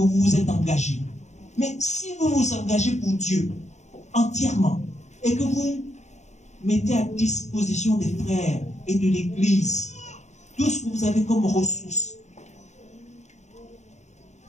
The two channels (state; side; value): late; right; 0.33 ms